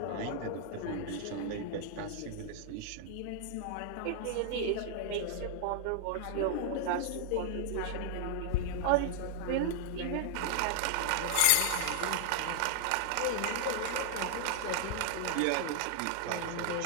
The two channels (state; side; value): different; both; correlation -0.01